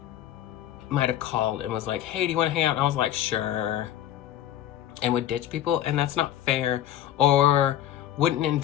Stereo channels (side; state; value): right; quieter; 11.9 dB